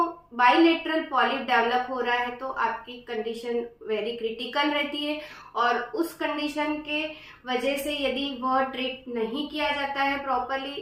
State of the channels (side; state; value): both; identical; correlation 1.00